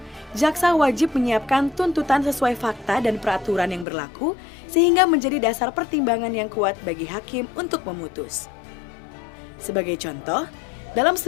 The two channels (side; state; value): right; drops out; at 3.9 s